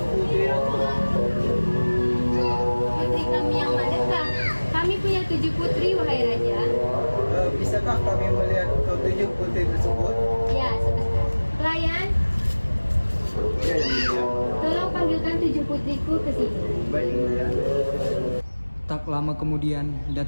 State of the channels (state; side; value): inverted; both; correlation -1.00